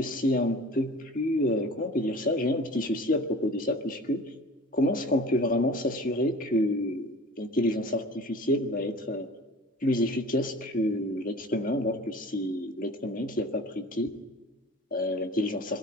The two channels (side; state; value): both; normal; correlation 0.41